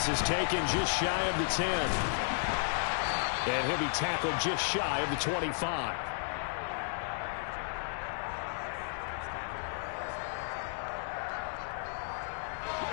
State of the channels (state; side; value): silent; right; digital silence